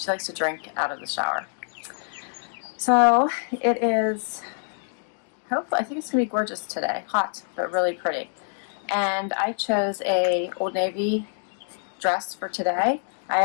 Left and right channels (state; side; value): silent; right; digital silence